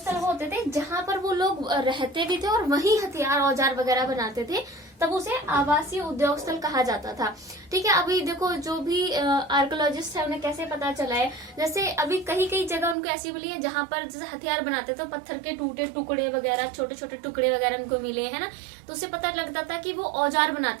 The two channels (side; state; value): left; drops out; at 13.0 s